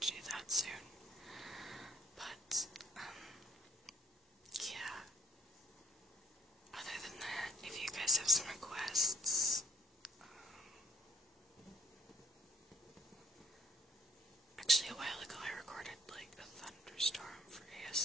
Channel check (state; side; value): normal; both; correlation 0.64